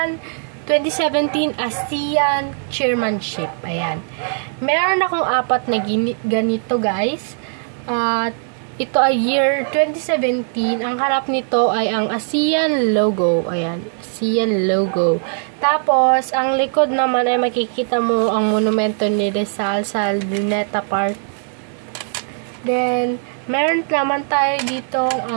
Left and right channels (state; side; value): silent; left; digital silence